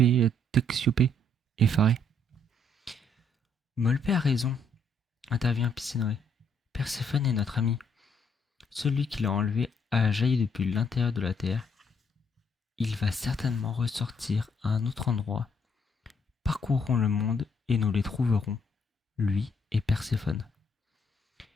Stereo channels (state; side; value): normal; both; correlation 0.69